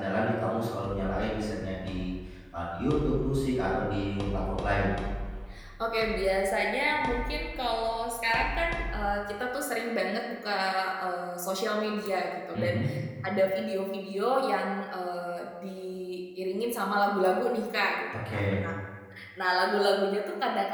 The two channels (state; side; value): identical; both; correlation 1.00